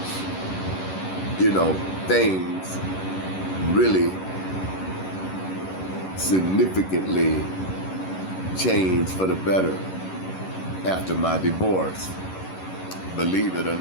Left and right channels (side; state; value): right; late; 11 ms